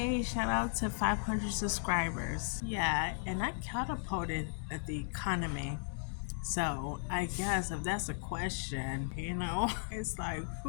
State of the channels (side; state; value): right; silent; digital silence